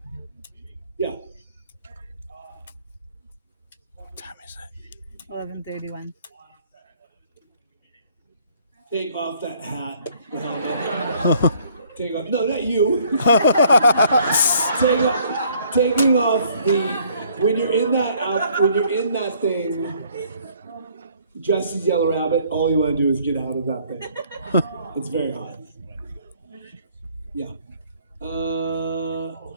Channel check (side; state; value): both; inverted; correlation -0.61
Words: Yeah. What time is it? 11:31. Take off that hat. The helmet. Take off. No, not you. Taking off the. When you're in that thing, dressed as Yellow Rabbit, all you want to do is get out of that thing. It's very hot. Yeah.